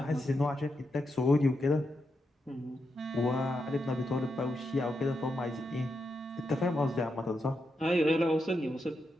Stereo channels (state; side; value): normal; both; correlation 0.85